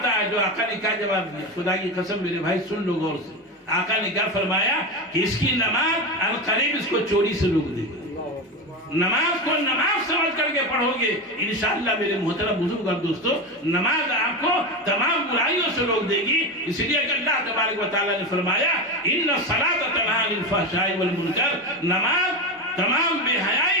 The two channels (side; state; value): both; normal; correlation 0.19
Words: ہے۔ جو آقا نے کیا جواب دیا؟ خدا کی قسم میرے بھائی سن لو غور سے، آقا نے کیا فرمایا کہ اس کی نماز القریب اس کو چوری سے روک دے گی۔ نماز کو نماز سمجھ کر کے پڑھو گے انشاءاللہ میرے محترم بزرگ اور دوستو، نماز آپ کو تمام برائیوں سے روک دے گی۔ اس لیے کہ اللہ تبارک و تعالیٰ نے فرمایا ان الصلاۃ تنہی عن الفحشاء والمنکر، نماز تمام بے